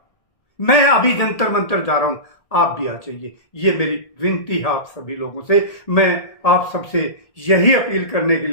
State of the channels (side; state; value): right; late; 1.8 ms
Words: मैं अभी जंतर मंतर जा रहा हूं, आप भी आ जाइए। ये मेरी विनती है आप सभी लोगों से। मैं आप सबसे यही अपील करने के